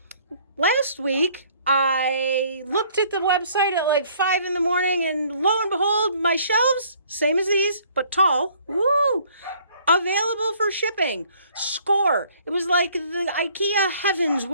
last week I looked at the website at like 5 in the morning and lo and behold, my shelves, same as these, but tall. Woo! Available for shipping. Score. It was like the Ikea heavens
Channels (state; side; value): inverted; both; correlation -0.59